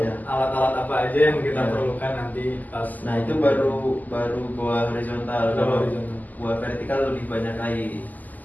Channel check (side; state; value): right; late; 0.082 ms